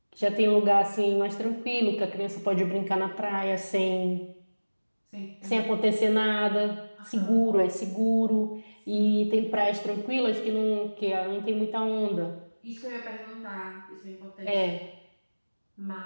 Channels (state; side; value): inverted; both; correlation -1.00